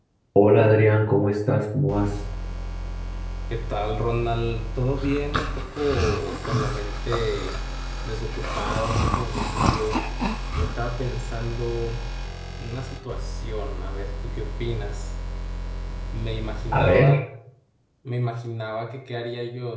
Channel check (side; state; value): both; identical; correlation 1.00